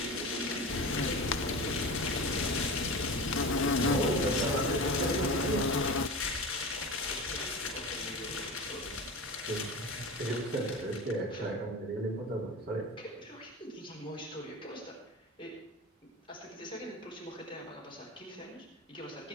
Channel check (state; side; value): normal; both; correlation 0.29